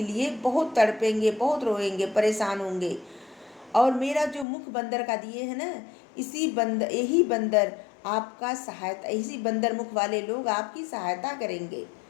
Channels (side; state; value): right; drops out; at 4.5 s